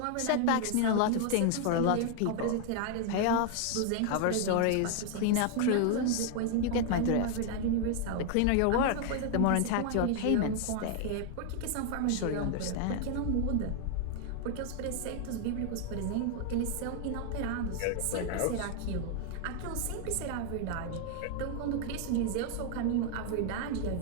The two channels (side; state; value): both; different; correlation 0.00